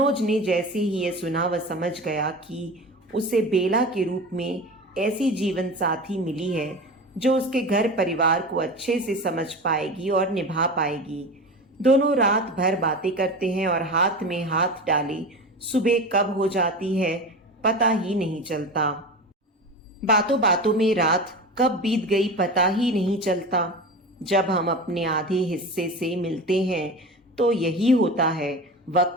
ने जैसे ही ये सुना वह समझ गया कि उसे बेला के रूप में ऐसी जीवन साथी मिली है जो उसके घर परिवार को अच्छे से समझ पाएगी और निभा पाएगी। दोनों रात भर बातें करते हैं और हाथ में हाथ डाले सुबह कब हो जाती है पता ही नहीं चलता। बातों बातों में रात कब बीत गई पता ही नहीं चलता। जब हम अपने आधे हिस्से से मिलते हैं तो यही होता है,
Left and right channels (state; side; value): normal; both; correlation 0.29